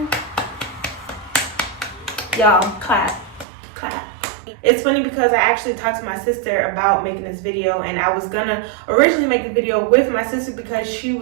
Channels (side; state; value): left; drops out; at 3.5 s